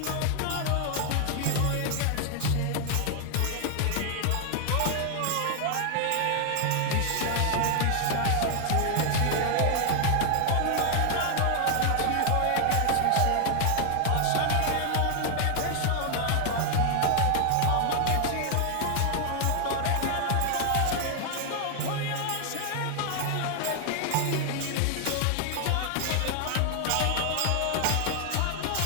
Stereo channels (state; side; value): different; both; correlation 0.00